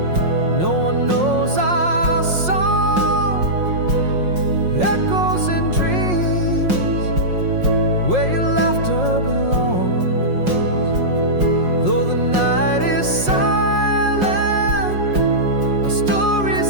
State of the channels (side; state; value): left; late; 5.6 ms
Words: no one knows our song. Echoes in dreams, where your laughter belongs. Though the night is silent, our